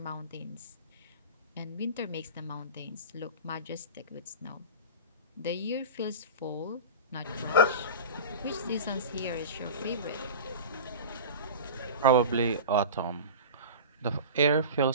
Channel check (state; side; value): inverted; both; correlation -0.31